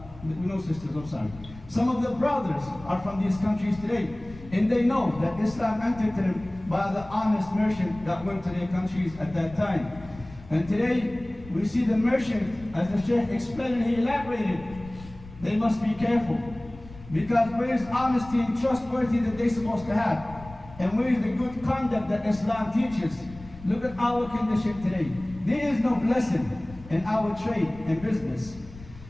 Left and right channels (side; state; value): left; noise; rumble, 18 dB below the sound